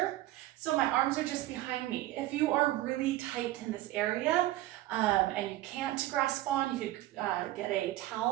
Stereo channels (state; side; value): quieter; left; 15.9 dB